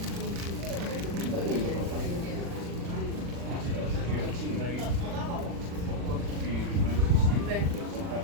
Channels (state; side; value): late; left; 40 ms